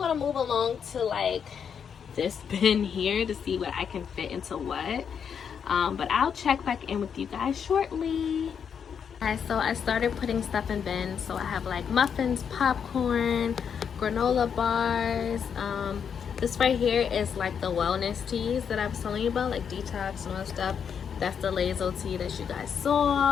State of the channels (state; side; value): quieter; right; 7.3 dB